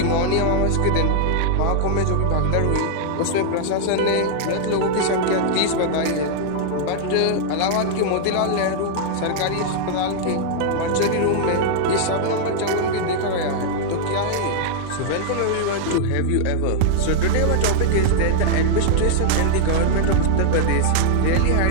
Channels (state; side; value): different; both; correlation -0.01